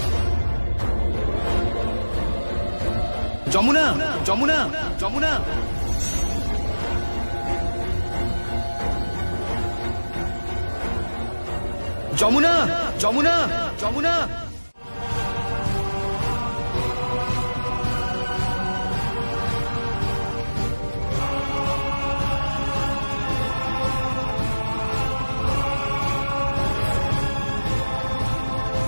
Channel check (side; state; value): both; inverted; correlation -1.00